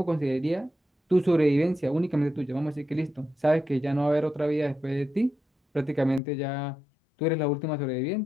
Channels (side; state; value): right; drops out; at 6.2 s